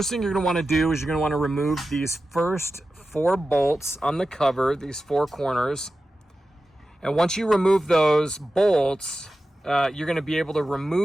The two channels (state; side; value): normal; both; correlation 0.93